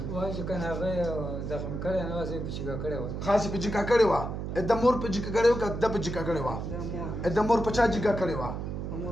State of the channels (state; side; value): noise; right; hum, 5 dB below the sound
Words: وایي چې که نه هغه زخم کړی نه وه، زه یې په چیګه کړې وه. خاص یې په جګه کړې وه. د مور په جګه کړې وه که ده په جګه کړې وه؟ د مور په چا جګه کړې وه؟ په